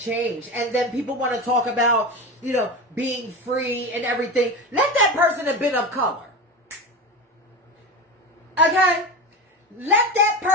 And then people want to talk about, being free and everything. Let that person have been of color. Okay? Let that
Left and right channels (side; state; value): both; normal; correlation 0.24